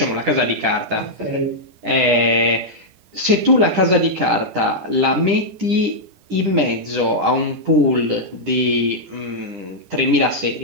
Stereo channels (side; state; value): left; late; 10 ms